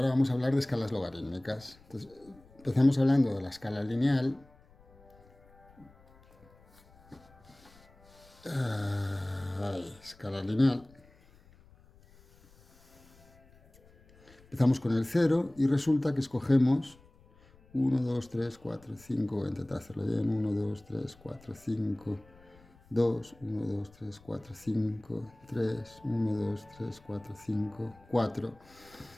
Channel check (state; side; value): noise; left; rumble, 27 dB below the sound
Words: vamos a hablar de escalas logarítmicas. Entonces, empezamos hablando de la escala lineal. Escala lineal. Empezamos con el 0 y resulta que escogemos 1, 2, 3, 4, 5. Voy a intentar hacerlo bien. 1, 2, 3, 4, 5, 2, 1, 2, 3, 4, 5, 3, 1, 2, 3, 4, 5, 4.